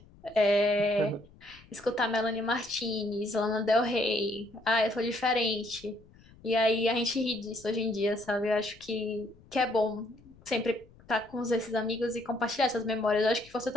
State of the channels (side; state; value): left; noise; rumble, 25 dB below the sound